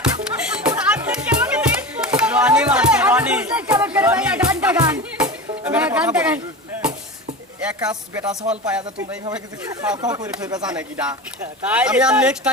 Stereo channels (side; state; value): both; normal; correlation 0.28